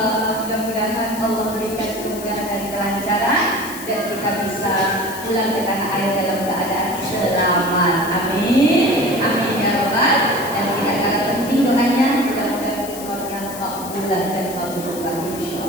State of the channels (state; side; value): noise; left; hiss, 12 dB below the sound